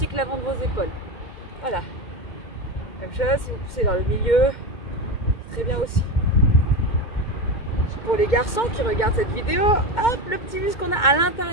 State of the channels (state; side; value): late; right; 2.1 ms